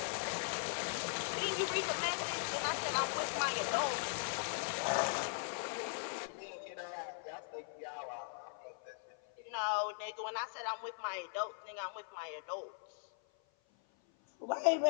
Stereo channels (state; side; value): silent; right; 51 dB below the other